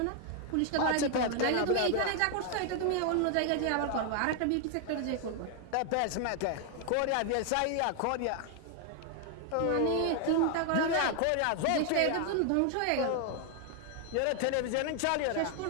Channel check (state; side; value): different; both; correlation 0.00